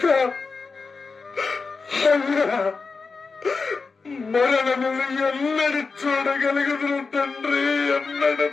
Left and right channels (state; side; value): quieter; right; 4.5 dB